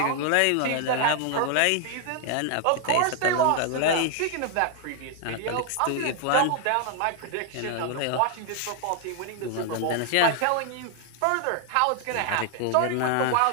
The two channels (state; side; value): different; both; correlation 0.00